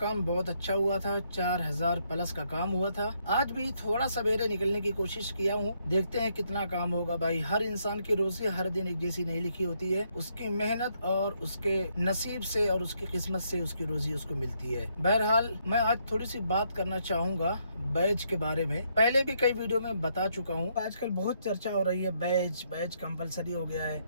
बहुत अच्छा हुआ था, 4000 प्लस का काम हुआ था। आज भी थोड़ा सवेरे निकलने की कोशिश किया हूँ, देखते हैं कितना काम होगा भाई। हर इंसान की रोजी हर दिन एक जैसी नहीं लिखी होती है, उसकी मेहनत और उसके नसीब से और उसकी किस्मत से उसकी रोजी उसको मिलती है। बहरहाल मैं आज थोड़ी सी बात करना चाहूंगा बैज के बारे में। पहले भी कई वीडियो में बता चुका हूँ। आजकल बहुत चर्चा हो रही है बैज कंपलसरी हो गया है।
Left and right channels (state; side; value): inverted; both; correlation -0.74